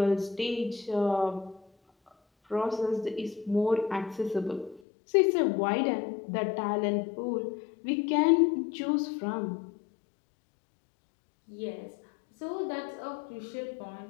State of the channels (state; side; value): drops out; right; at 4.8 s